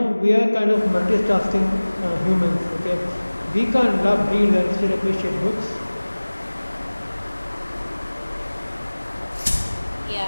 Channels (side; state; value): both; inverted; correlation -1.00